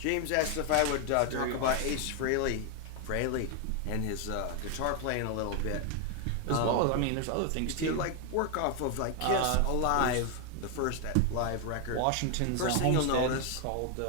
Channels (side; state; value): both; different; correlation 0.01